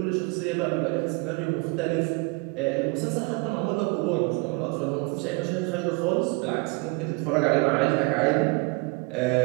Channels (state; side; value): quieter; left; 28.8 dB